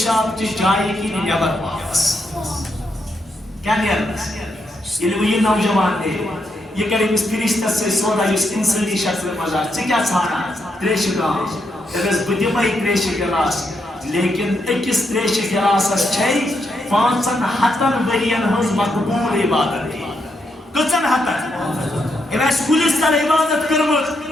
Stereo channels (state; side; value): normal; both; correlation 0.80